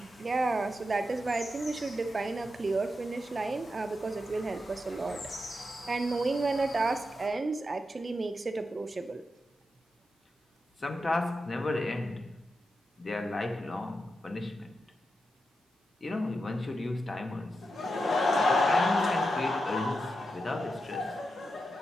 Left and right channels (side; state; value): both; normal; correlation 0.87